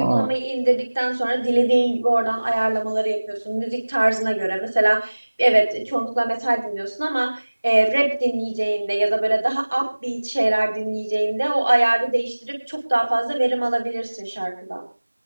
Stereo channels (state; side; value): inverted; both; correlation -1.00